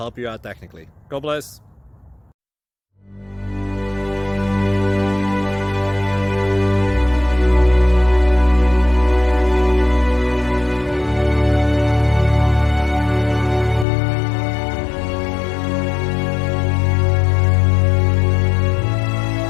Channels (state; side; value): drops out; right; at 13.9 s